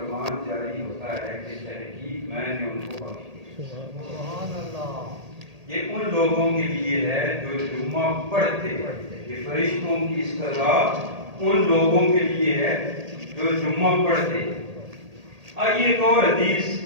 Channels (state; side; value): late; left; 1.8 ms